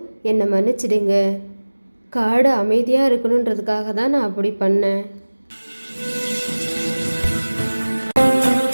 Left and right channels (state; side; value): inverted; both; correlation -1.00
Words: என்னை மன்னிச்சிடுங்க. காடு அமைதியாக இருக்கணுன்றதுக்காக தான் நான் அப்படி பண்ணேன்.